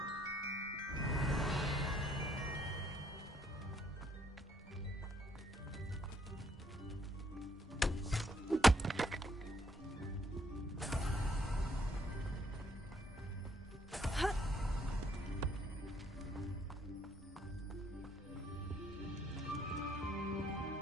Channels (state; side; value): normal; both; correlation 0.69